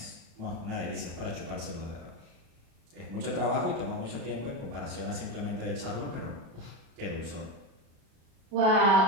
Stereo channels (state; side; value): late; left; 37 ms